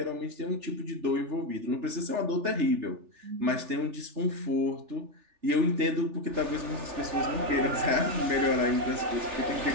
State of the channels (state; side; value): late; left; 3.4 ms